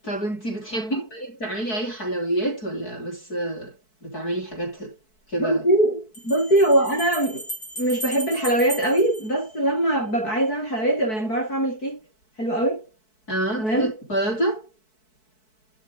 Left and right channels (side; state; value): right; late; 4.6 ms